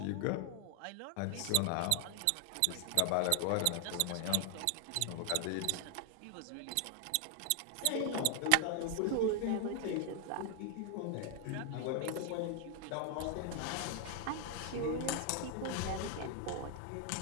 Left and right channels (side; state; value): both; different; correlation 0.00